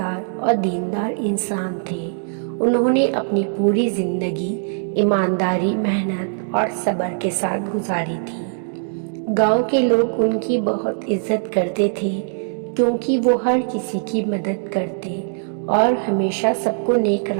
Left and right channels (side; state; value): left; silent; digital silence